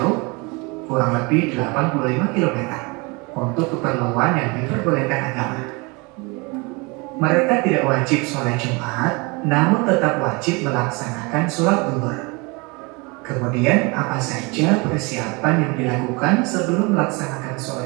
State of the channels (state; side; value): quieter; left; 28.0 dB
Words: kurang lebih 85 km untuk keperluan yang diperbolehkan agama. Mereka tidak wajib sholat Jumat, namun tetap wajib melaksanakan sholat zuhur. Kemudian apa saja persiapan yang dilakukan sebelum melaksanakan